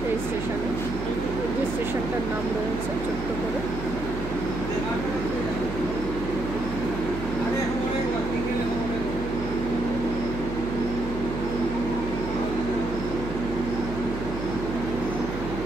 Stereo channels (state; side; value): noise; right; hum, 8 dB below the sound